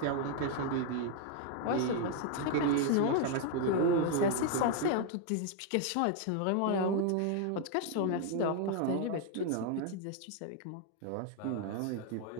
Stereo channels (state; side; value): different; both; correlation 0.00